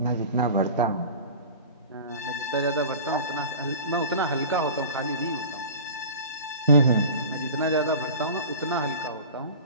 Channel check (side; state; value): both; inverted; correlation -0.37